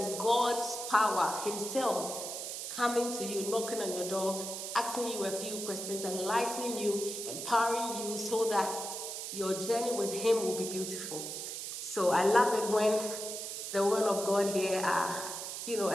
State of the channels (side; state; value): right; noise; hiss, 6 dB below the sound